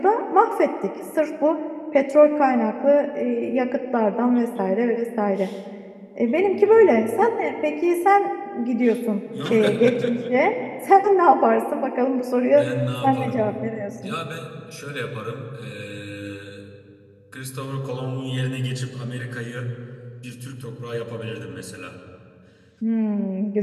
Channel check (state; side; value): identical; both; correlation 1.00